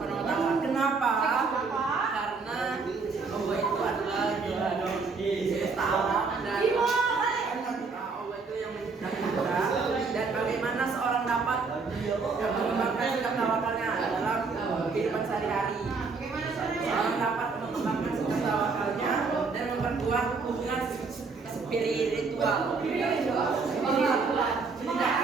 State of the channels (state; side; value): quieter; left; 4.5 dB